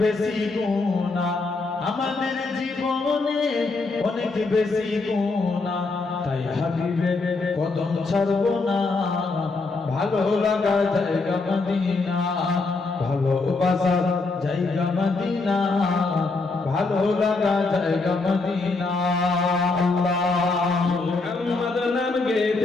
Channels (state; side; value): quieter; right; 3.7 dB